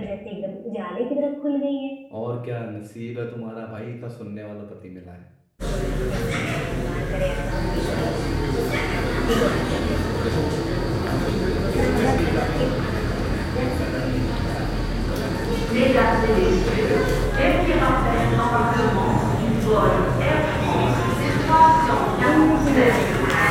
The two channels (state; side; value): identical; both; correlation 1.00